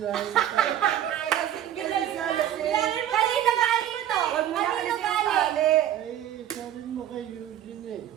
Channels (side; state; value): left; quieter; 11.3 dB